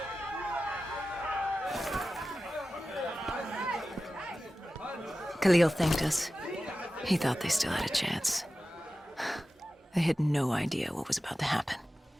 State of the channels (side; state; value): both; normal; correlation 0.94